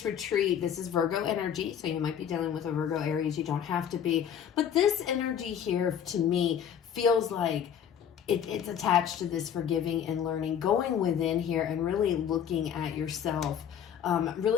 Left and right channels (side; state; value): right; quieter; 8.7 dB